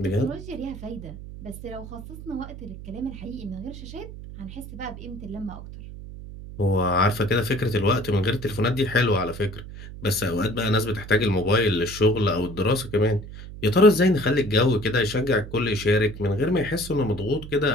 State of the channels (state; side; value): noise; right; hum, 13 dB below the sound